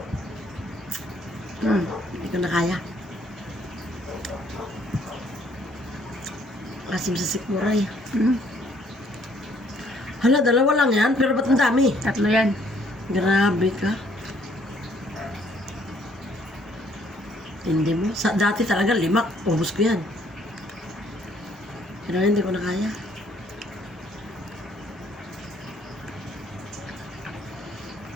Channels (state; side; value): normal; both; correlation 0.64